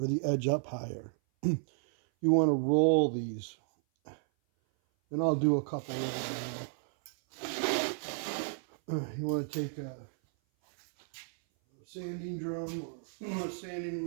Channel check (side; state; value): left; silent; 56 dB below the other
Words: the edge up higher. You want to roll these. And I'll do a couple of them. You want to take a sanding drum or a sanding